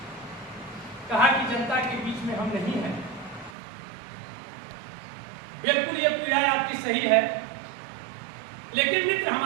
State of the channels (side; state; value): left; drops out; at 3.6 s